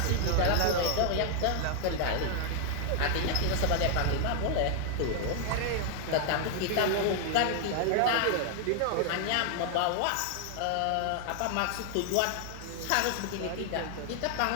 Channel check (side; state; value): both; different; correlation 0.00